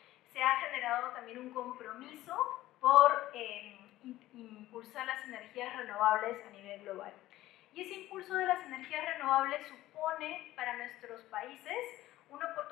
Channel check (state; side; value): quieter; right; 15.6 dB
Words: se ha generado también un compromiso por impulsar las energías renovables a nivel global. Y ese impulso de las energías renovables supone para nuestros países una